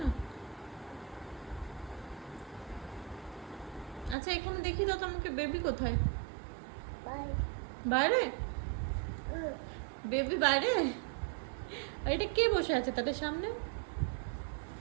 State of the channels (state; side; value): drops out; left; at 4.2 s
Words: আচ্ছা এখানে দেখি দাও তো আমাকে বেবি কোথায় বাইরে বেবি বাইরে এটা কে বসে আছে তাদের সামনে